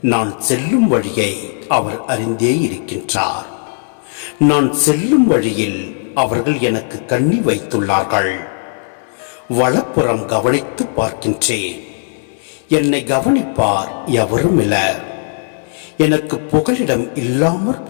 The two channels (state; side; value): silent; right; 61 dB below the other